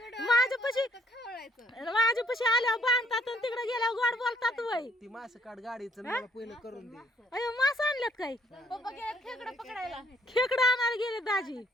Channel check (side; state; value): both; normal; correlation 0.66